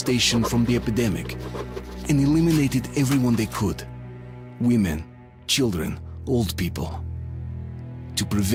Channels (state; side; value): identical; both; correlation 1.00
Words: from the epidemic and eliminated everyone they could. Women, children, old people. To